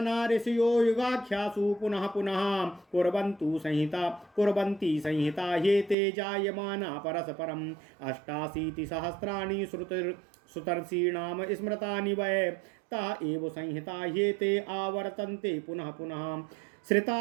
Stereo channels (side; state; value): left; drops out; at 6.0 s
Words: ऋषयो युगाख्यासु पुनः पुनः कुर्वन्ति संहिता ह्येते जायमाना परस्परम् 88 सहस्राणि श्रुतर्षीणां स्मृतानि वै ता एव संहिता ह्येते आवर्तन्ते पुनः पुनः श्रिता